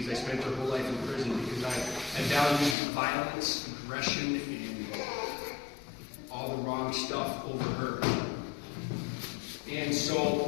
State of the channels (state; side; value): drops out; right; at 2.8 s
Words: I spent her whole life in prison because I value violence, aggression, and all the wrong stuff over her. And